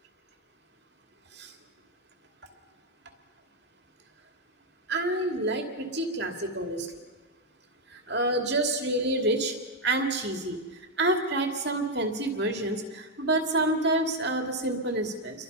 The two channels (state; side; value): normal; both; correlation 0.02